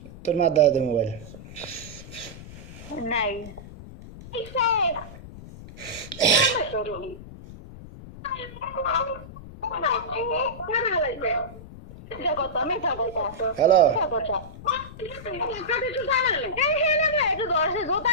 তোর মা দাদা দে মোবাইল। নাই হ্যালো। জোতা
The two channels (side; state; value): left; noise; rumble, 15 dB below the sound